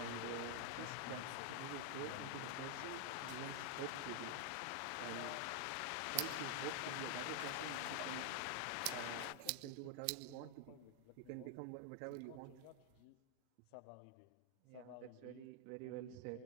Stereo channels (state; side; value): different; both; correlation 0.00